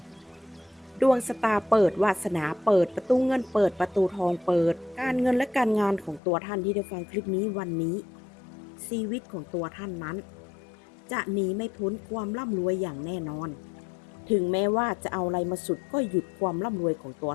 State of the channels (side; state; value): right; drops out; at 6.2 s